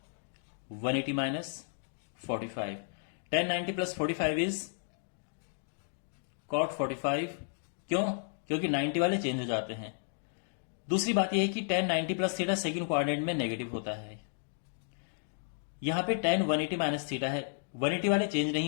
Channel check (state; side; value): silent; right; digital silence